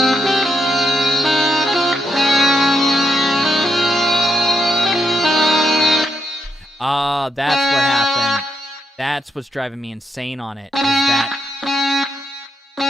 that's what happened. That's what's driving me insane on it, is that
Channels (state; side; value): normal; both; correlation 0.80